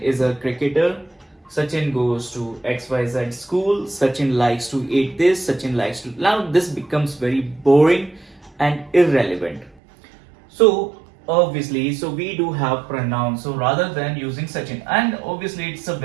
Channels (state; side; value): drops out; left; at 9.8 s